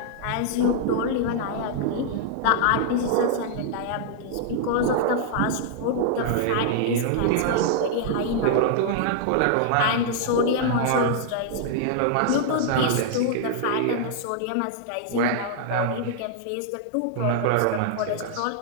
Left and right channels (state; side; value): different; both; correlation -0.01